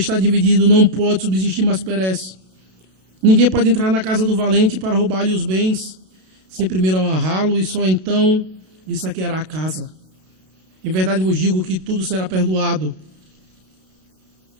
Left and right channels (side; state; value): left; late; 32 ms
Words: dividido, não pode subsistir, mas perece. Ninguém pode entrar na casa do valente para roubar-lhe os bens, sem primeiro amarrá-lo, e só então lhe saqueará a casa. Em verdade vos digo que tudo será perdoado